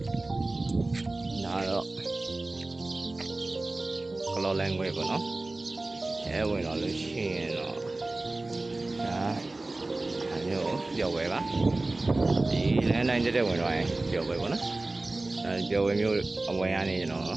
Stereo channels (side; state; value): left; quieter; 3.0 dB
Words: ဒါတော့ကလောလန်ခွဲပေါ့နော်အဲဝင်တော့လို့ရှိရင်တော့ဒါမျိုးပျော်ဝဲပါဒီလမ်းတိုင်းတက်ဝင်တော့ရင်ပျော်ဝဲပေါ့နော်အဲပျော်ဝဲမျိုးအဝင်ရနေကျွန်တော်